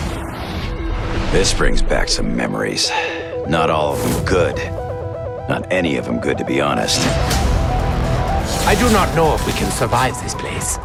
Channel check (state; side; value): identical; both; correlation 1.00